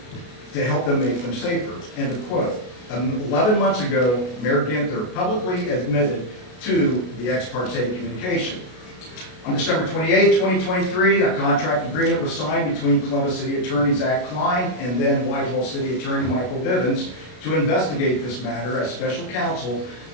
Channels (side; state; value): right; late; 33 ms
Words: to help them make them safer." End of quote. 11 months ago, Mayor Ginther publicly admitted to the ex parte communication. On December 28, 2023, a contract agreement was signed between Columbus City Attorney Zach Klein and then Whitehall City Attorney Michael Bivens to investigate this matter as special counsel